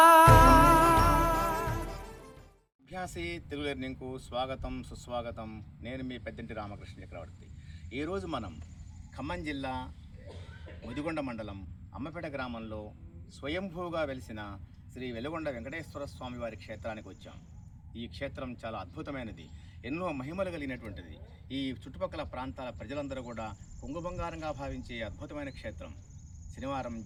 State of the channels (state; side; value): identical; both; correlation 1.00